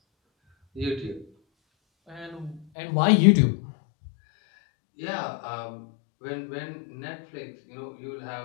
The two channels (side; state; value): right; drops out; at 2.7 s